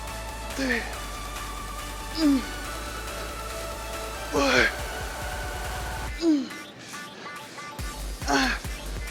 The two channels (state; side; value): identical; both; correlation 1.00